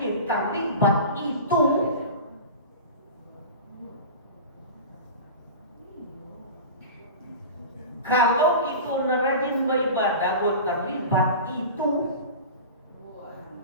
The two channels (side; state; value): both; inverted; correlation -0.32